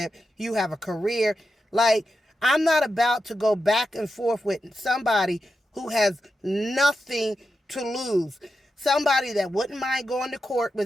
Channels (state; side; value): normal; both; correlation 0.89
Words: You have a career. Like, I'm not about to go back and forth with somebody who has nothing to lose. Somebody that wouldn't mind going to court